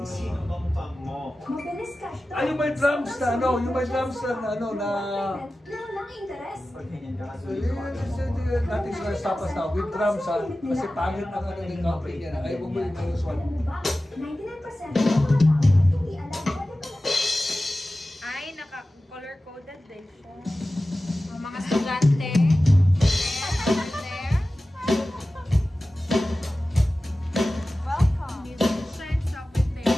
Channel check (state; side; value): normal; both; correlation 0.95